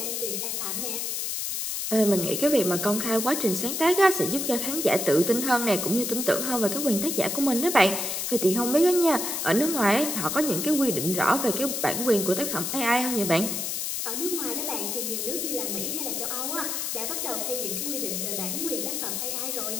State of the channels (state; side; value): noise; left; hiss, 2 dB below the sound